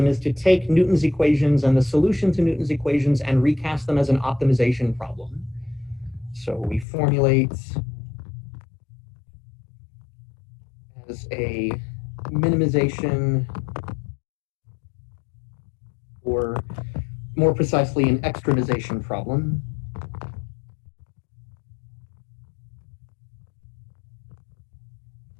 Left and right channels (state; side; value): drops out; right; at 6.9 s